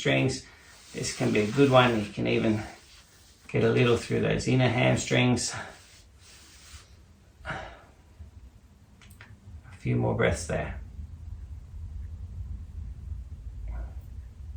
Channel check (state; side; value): identical; both; correlation 1.00